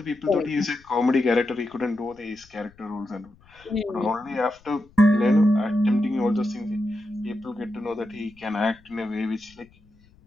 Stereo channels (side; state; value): left; noise; rumble, 28 dB below the sound